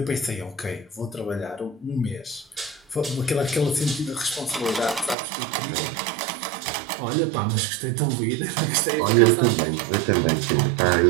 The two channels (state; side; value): drops out; left; at 5.2 s